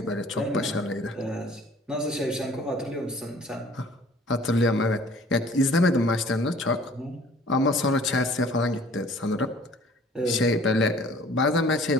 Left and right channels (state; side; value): normal; both; correlation 0.52